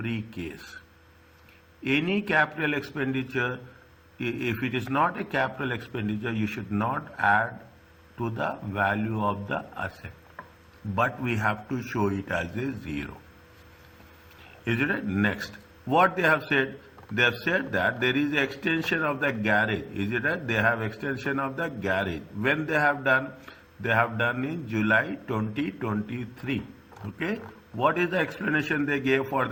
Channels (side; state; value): both; identical; correlation 1.00